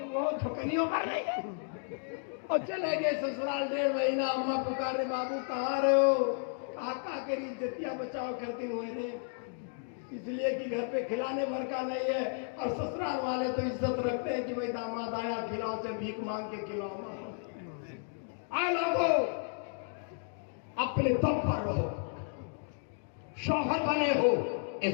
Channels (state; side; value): silent; right; 56 dB below the other